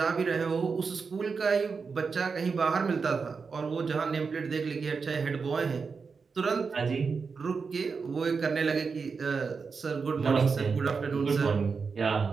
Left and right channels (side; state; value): left; quieter; 5.1 dB